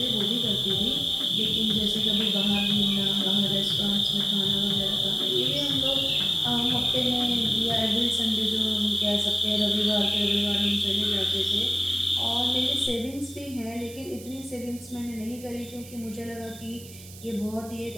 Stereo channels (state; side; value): noise; right; hiss, 18 dB below the sound